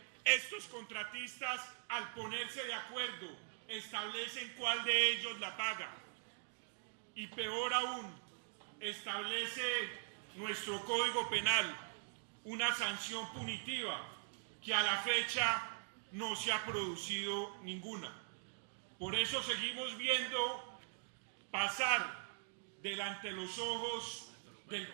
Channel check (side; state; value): left; silent; digital silence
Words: estos contratistas, al ponerse de acuerdo, establecen cuál de ellos la paga. Y peor aún, establece nuestro Código Penal una sanción punitiva que a la fecha no se ha producido ninguna. Por eso seguimos viendo pasar delante de los ojos del